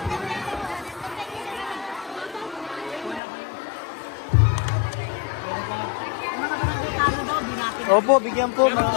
Opo, bigyan po.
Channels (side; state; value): right; drops out; at 3.2 s